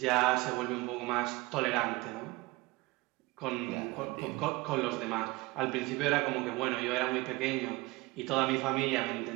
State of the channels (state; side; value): quieter; left; 22.3 dB